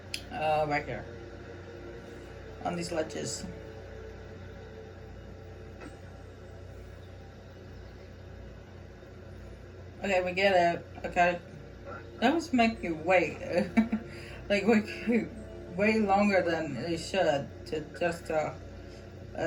right here on these ledges. Okay, we get it. Okay. That was make you wait. Like, way longer than it should to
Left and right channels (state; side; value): identical; both; correlation 1.00